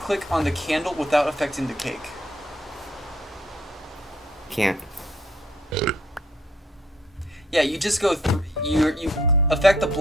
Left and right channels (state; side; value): normal; both; correlation 0.65